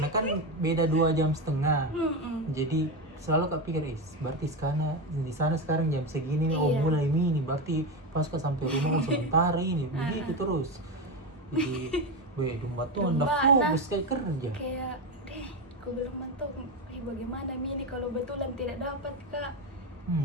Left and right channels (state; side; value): normal; both; correlation 0.15